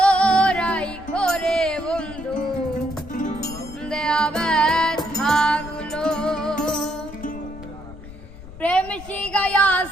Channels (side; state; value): left; noise; rumble, 16 dB below the sound